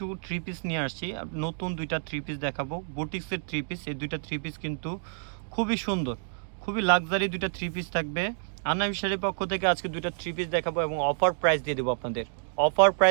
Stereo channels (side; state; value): left; silent; digital silence